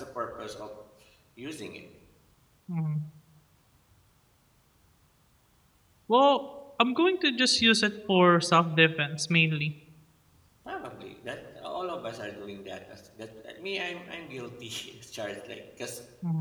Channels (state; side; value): identical; both; correlation 1.00